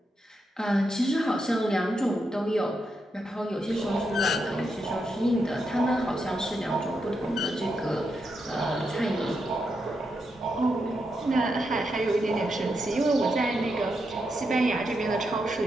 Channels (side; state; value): both; normal; correlation 0.83